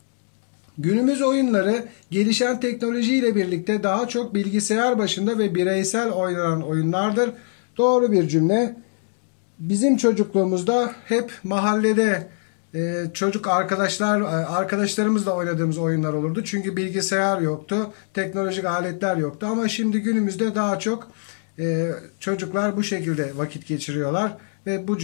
Günümüz oyunları gelişen teknolojiyle birlikte daha çok bilgisayar başında ve bireysel oynanan oyunlardır. Doğru bir cümle. Bizim çocukluğumuzda hep mahallede çocuk arkadaşlarımızla oynadığımız oyunlar olurdu. Çünkü bilgisayar yoktu, teknolojik aletler yoktu. Ama şimdi günümüzde daha çok çocuklar bu şekilde vakit geçiriyorlar ve bu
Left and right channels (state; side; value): silent; right; 63 dB below the other